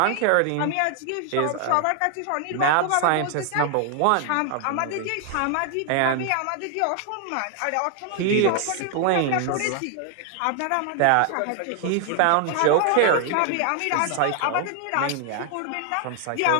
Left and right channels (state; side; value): different; both; correlation 0.00